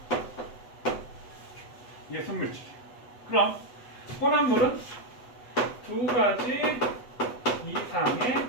이게 순물질. 그럼 혼합물은 두 가지 이상의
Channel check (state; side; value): late; right; 8.0 ms